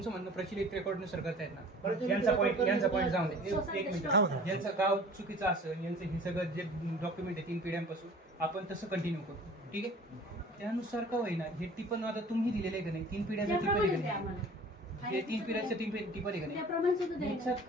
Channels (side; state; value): both; normal; correlation 0.46